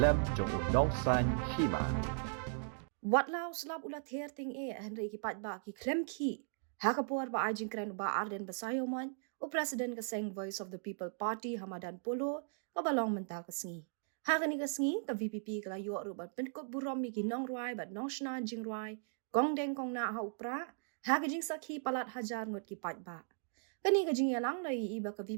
jong udongsan hima. Wat lau slap ulat herting Henry kipat ba ki klem ki. Hakapur ba ajing kren ba Arden Basayoman o President kaseng Voice of the People Party Hamadan Polo kabalong menta kasngi. Hakani kasngi ka VPP kala yo rubat penkop burom mi ginong ruai bat nong shna jing ruai gong deng kong na ha upra hakajing sakhi palat hajar ngot kipat ba. Kani kajing yalang lai iba ka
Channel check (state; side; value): silent; left; digital silence